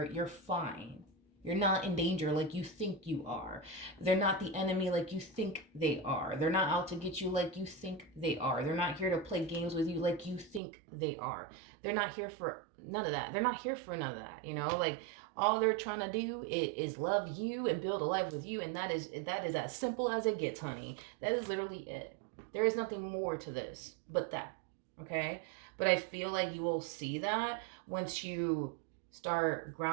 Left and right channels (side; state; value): left; drops out; at 10.6 s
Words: fine. You're not in danger like you think you are. They're not the enemy like you think they are. They're not out to get you like you think they are. They're not here to play games with you like you think they are. They're not here for none of that. They're not here for none of that. Like, all they're trying to do is love you and build a life with you. And that is as simple as it gets, honey. That is literally it. There is nothing more to this but that. Okay, but I feel like you will see that once you start